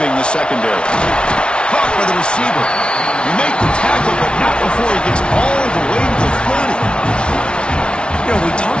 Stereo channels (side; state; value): right; late; 0.057 ms